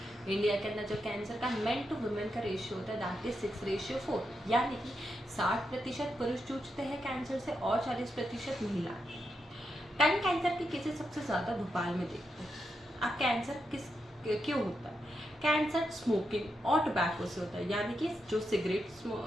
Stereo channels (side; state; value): both; normal; correlation 0.84